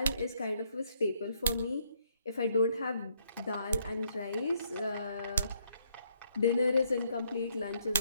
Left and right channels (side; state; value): both; inverted; correlation -0.70